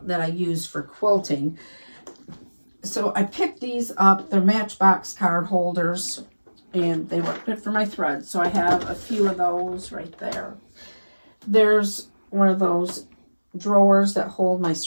that I use for quilting. So I picked these up. They're Matchbox card holders. and they work good for my thread. So I have a few of those right there. There's one of those drawers that hold my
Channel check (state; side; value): inverted; both; correlation -1.00